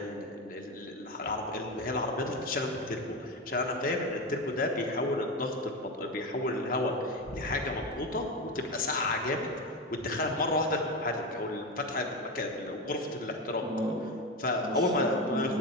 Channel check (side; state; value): both; normal; correlation 0.17